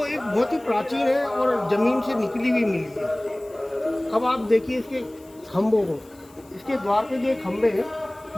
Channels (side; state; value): left; noise; hiss, 28 dB below the sound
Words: एक बहुत ही प्राचीन है और ज़मीन से निकली हुई मिली है। अब आप देखिए इसके खम्भों को, इसके द्वार पे जो खम्भे हैं